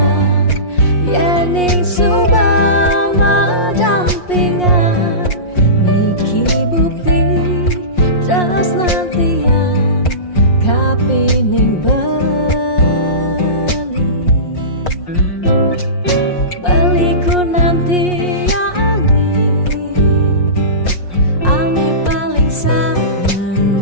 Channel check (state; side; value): late; right; 5.6 ms